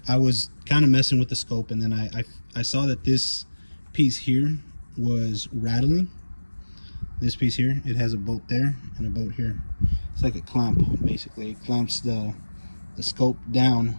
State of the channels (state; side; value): inverted; both; correlation -1.00